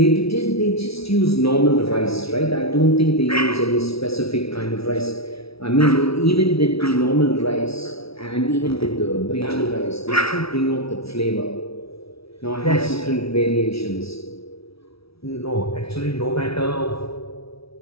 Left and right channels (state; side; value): late; right; 0.76 ms